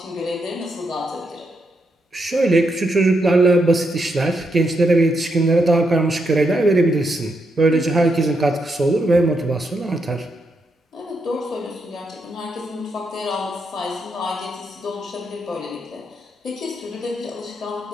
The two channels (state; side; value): normal; both; correlation 0.81